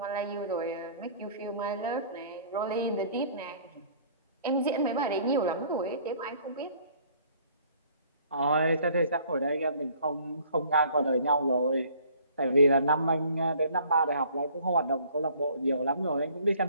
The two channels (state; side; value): inverted; both; correlation -0.55